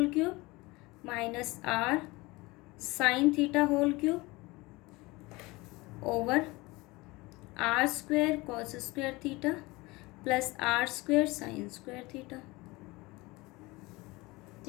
cube minus r sine theta whole cube over r square cos square theta plus r square sine square theta.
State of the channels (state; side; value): quieter; right; 22.7 dB